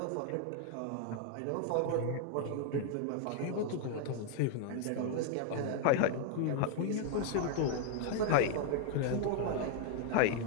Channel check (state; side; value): different; both; correlation 0.00